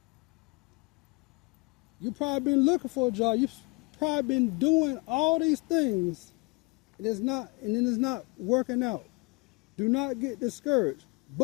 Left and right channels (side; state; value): right; quieter; 28.5 dB